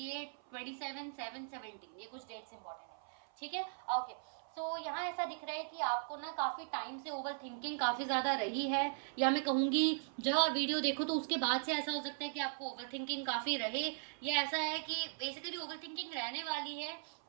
27, 7, 17, ये कुछ डेट्स इंपॉर्टेंट है, ठीक है। ओके, सो यहाँ ऐसा दिख रहा है कि आपको ना काफी टाइम से ओवर थिंकिंग काफी ज्यादा रही है, या मैं कहूंगी जब आप वीडियो देखो तो उसके बाद से ऐसा हो सकता है कि आपको ओवर थिंकिंग काफी रहे, या ऐसा है कि बेसिकली ओवर थिंकिंग रहने वाली है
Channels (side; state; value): left; silent; 52 dB below the other